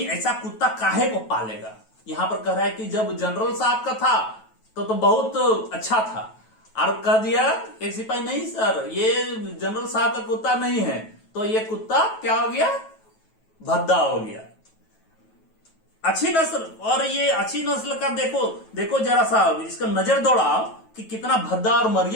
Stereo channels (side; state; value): right; late; 9.2 ms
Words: ऐसा कुत्ता काहे को पालेगा। यहां पर कह रहा है कि जब जनरल साहब का था तो बहुत अच्छा था, और कह दिया एक सिपाही, नहीं सर ये जनरल साहब का कुत्ता नहीं है, तो ये कुत्ता क्या हो गया, भद्दा हो गया। अच्छी नस्ल, और ये अच्छी नस्ल का देखो जरा सा इसका नजर दौड़ाओ कि कितना भद्दा और